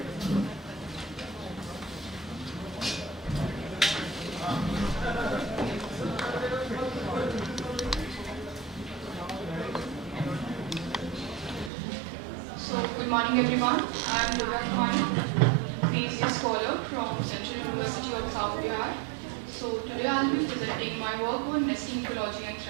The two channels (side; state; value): left; drops out; at 11.7 s